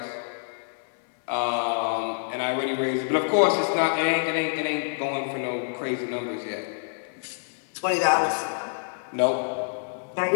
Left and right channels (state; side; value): silent; right; 60 dB below the other